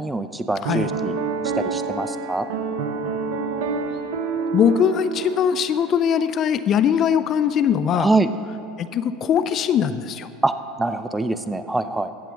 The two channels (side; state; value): right; quieter; 3.0 dB